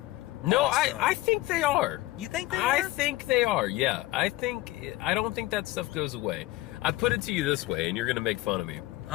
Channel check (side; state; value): right; quieter; 18.2 dB